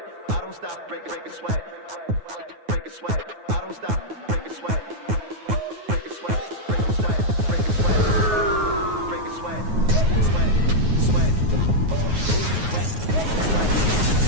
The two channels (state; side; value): late; left; 9.4 ms